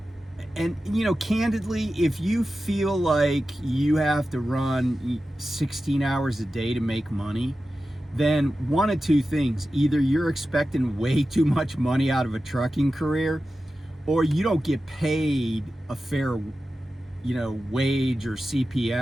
you know, candidly, if you feel like you have to run 16 hours a day to make money, then one of two things: either you're expecting way too much money out of a trucking career, or you don't get paid a fair, you know, wage or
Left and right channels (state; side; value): normal; both; correlation 0.93